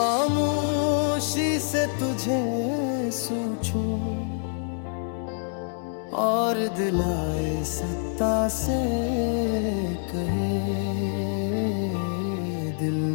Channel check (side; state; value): right; silent; digital silence